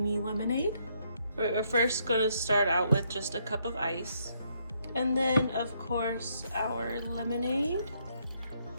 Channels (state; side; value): inverted; both; correlation -0.73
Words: lemonade. We're first gonna start out with just a cup of ice. And then, of course, our lemonade.